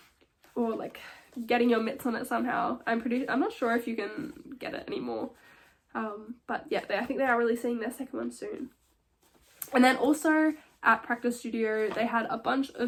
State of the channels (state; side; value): identical; both; correlation 1.00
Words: or like getting your mitts on it somehow. I'm not sure if you can get it anymore, but yeah, I think they are releasing their second one soon. And then also at Practice Studio, they had a bunch